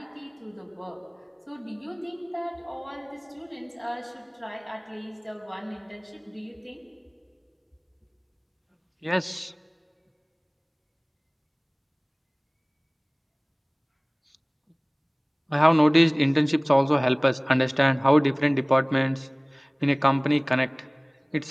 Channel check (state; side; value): identical; both; correlation 1.00